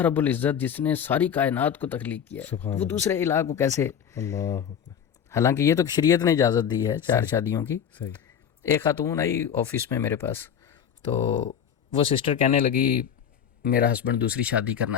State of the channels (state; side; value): quieter; right; 8.3 dB